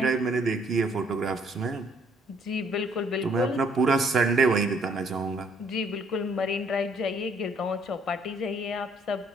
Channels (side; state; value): both; normal; correlation 0.65